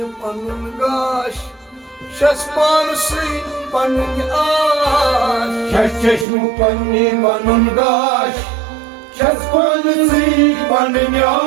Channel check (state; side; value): drops out; left; at 6.2 s